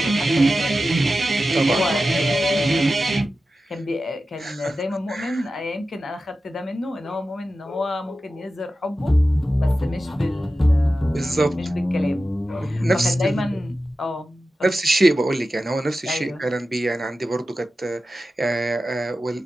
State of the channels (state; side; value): normal; both; correlation 0.93